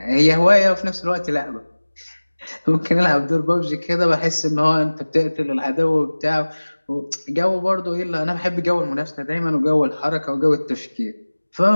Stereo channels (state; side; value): inverted; both; correlation -1.00